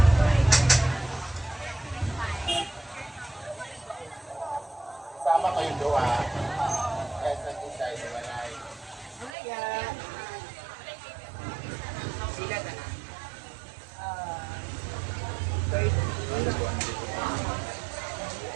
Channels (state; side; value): drops out; left; at 9.3 s